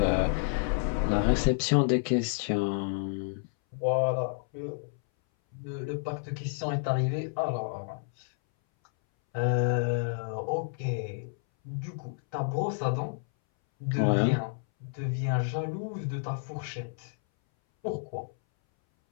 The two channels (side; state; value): right; silent; 58 dB below the other